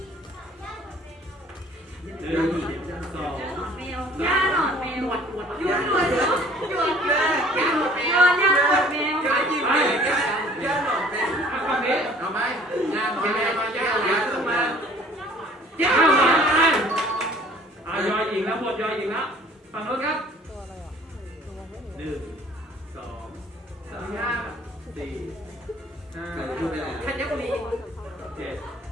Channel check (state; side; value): normal; both; correlation 0.53